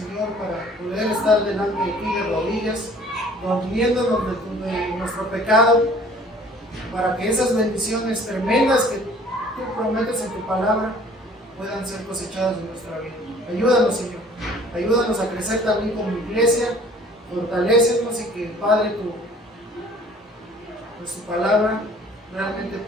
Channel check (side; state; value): both; normal; correlation 0.52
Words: para poder estar delante de ti de rodillas, confiándonos de nuestro pecado, para que esas bendiciones tremendas que tú prometes en tu palabra puedan ser cosechadas en nuestra vida. Ayúdanos, Señor. Ayúdanos a crecer también como iglesia. Fortalécenos y que, Padre, tu palabra realmente